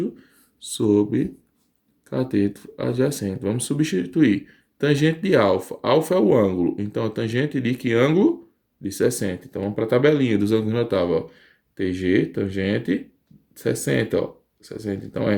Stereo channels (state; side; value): identical; both; correlation 1.00